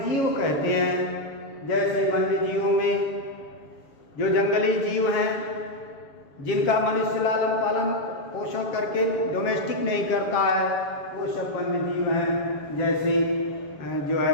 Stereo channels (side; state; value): right; late; 7.5 ms